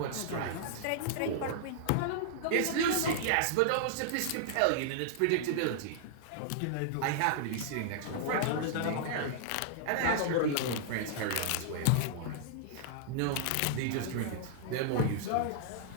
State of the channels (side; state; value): both; different; correlation -0.01